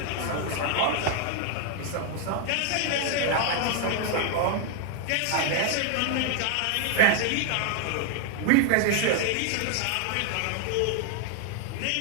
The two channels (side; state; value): both; different; correlation 0.00